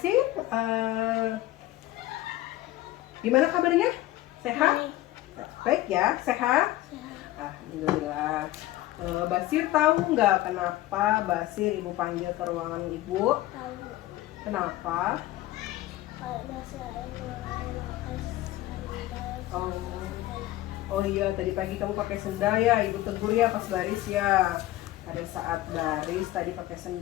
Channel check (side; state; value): right; quieter; 15.9 dB